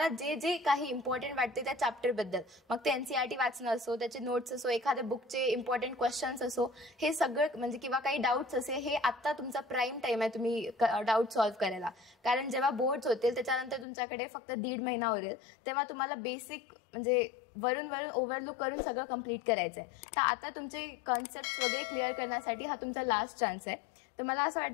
जे काही इम्पॉर्टंट वाटते त्या चॅप्टरबद्दल, मग ते NCERT वाचणं असो, त्याचे नोट्स असो, एखाद्या बुकचे इम्पॉर्टंट क्वेश्चन्स असो, हे सगळं म्हणजे किंवा काही डाऊट्स असे, हे आता तुमचा प्राईम टाईम आहे तुम्ही डाऊट सॉल्व्ह करायला. कारण जेव्हा बोर्ड्स होतील त्याच्यानंतर तुमच्याकडे फक्त 1.5 महिना उरेल तेव्हा तुम्हाला बेसिक म्हणजे वरून ओव्हरलुक करून सगळं कंप्लीट करायचं आहे. तर आता तुमचे कॉन्सेप्ट वगैरे क्लिअर करण्यासाठी हा तुमचा लास्ट चान्स आहे. तर मला असं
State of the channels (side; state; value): right; drops out; at 13.9 s